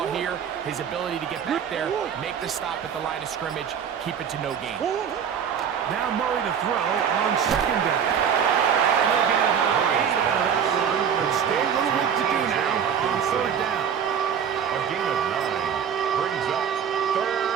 here, his ability to get back there, make the stop at the line of scrimmage, keep it to no gain. Now Murray to throw on 2nd down. And they'll get about 8 out of that one, but still a little work to do now on 3rd down. A gain of 9 brings up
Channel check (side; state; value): left; quieter; 7.9 dB